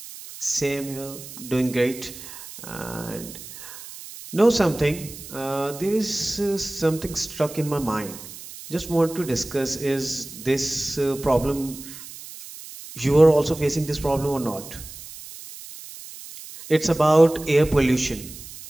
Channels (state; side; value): noise; right; hiss, 14 dB below the sound